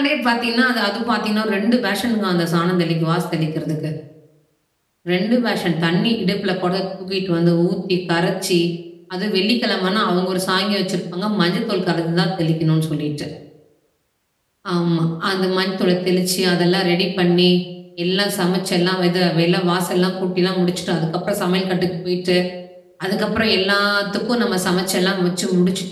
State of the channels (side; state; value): both; identical; correlation 1.00